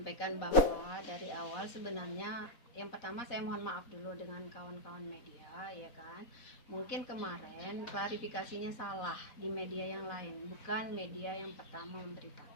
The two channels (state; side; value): late; right; 4.1 ms